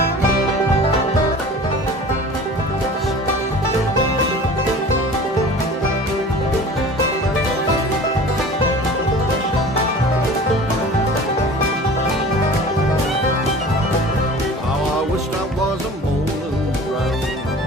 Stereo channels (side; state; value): both; normal; correlation 0.41